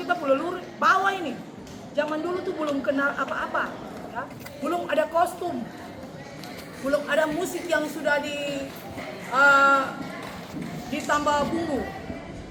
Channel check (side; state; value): both; identical; correlation 1.00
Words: kita pelelur bawah ini. Zaman dulu tuh belum kenal apa-apa. Ya. Belum ada kostum. Belum ada musik yang sudah ditambah bumbu.